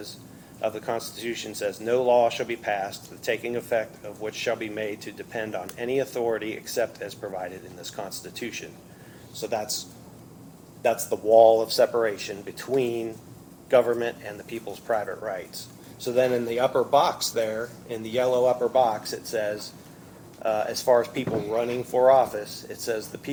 of the Constitution says, no law shall be passed, the taking effect of which shall be made to depend on any authority except as provided in this Constitution. So that's the wall of separation between government and the people's private rights. So then in the upper box there, in the yellow upper box, it says, as far as people running for office, it says the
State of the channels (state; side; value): identical; both; correlation 1.00